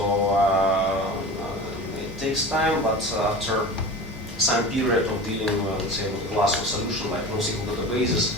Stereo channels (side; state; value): both; normal; correlation 0.34